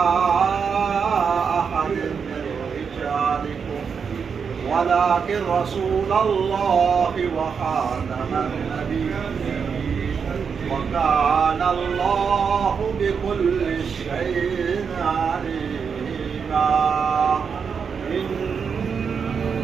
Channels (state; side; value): quieter; left; 6.3 dB